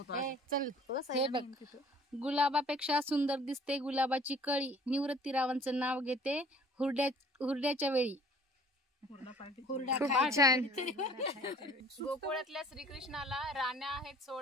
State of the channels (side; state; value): both; normal; correlation 0.52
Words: गुलाबापेक्षा सुंदर दिसते गुलाबाची कळी, निवृत्तीरावांचं नाव घेते हुरड्याच्या वेळी. गोकुळातल्या श्रीकृष्णाला राण्या आहेत